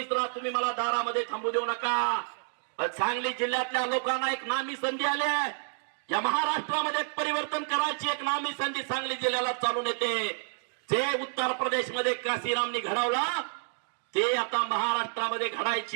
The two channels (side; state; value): left; silent; digital silence